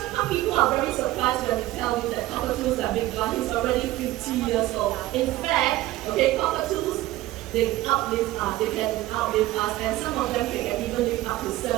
people are very surprised when you tell me that cockatoos are Big John. He's already 50 years old. In fact, okay, cockatoos, they outlive us, they can outlive us, and some of them can even live up to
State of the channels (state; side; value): quieter; left; 16.4 dB